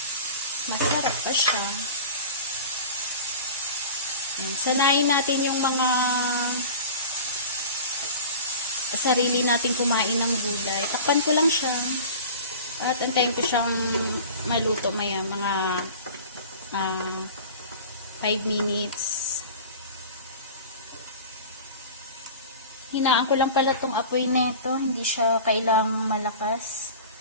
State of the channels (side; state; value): both; inverted; correlation -0.37